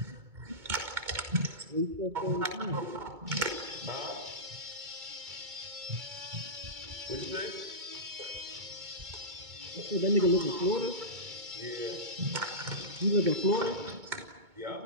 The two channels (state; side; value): late; left; 2.2 ms